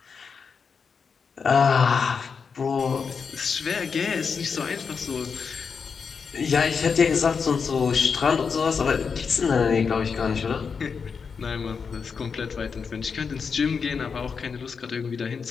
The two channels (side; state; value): right; quieter; 5.7 dB